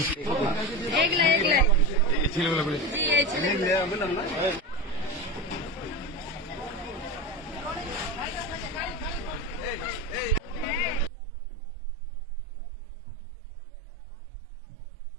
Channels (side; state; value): left; drops out; at 11.1 s